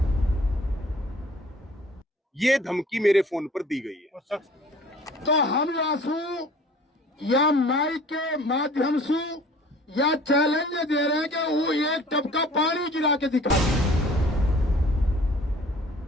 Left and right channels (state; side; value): normal; both; correlation 0.50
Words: ये धमकी मेरे फोन पर दी गई है। तो हम आंसू या माइक के माध्यम से या चैलेंज दे रहे हैं कि वो एक टपका पानी गिरा के दिखा